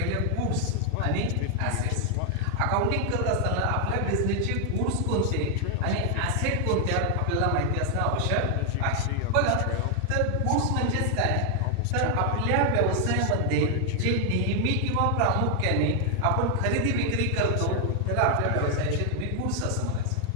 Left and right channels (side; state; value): both; different; correlation 0.00